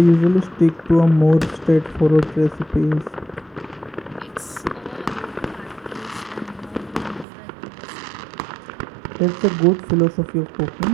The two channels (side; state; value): left; drops out; at 7.2 s